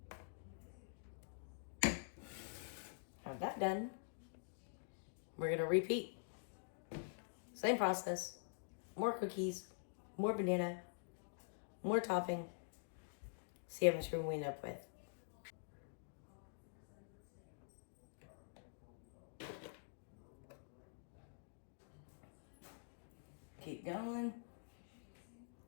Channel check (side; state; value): right; silent; digital silence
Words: have that done. We're gonna repeat. Same process. More cookies, more banana, more topping. See how much room we end up with. Keep going.